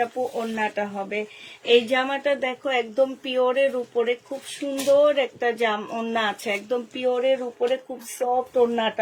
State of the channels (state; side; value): identical; both; correlation 1.00